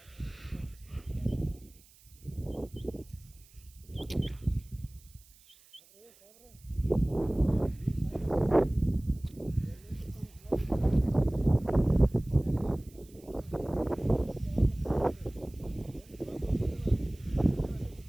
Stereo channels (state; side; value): noise; right; hiss, 27 dB below the sound